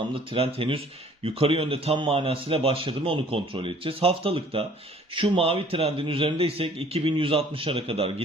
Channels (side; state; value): both; normal; correlation 0.55